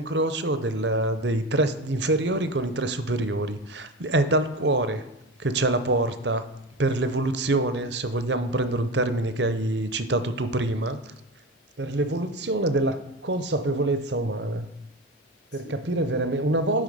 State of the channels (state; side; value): normal; both; correlation 0.25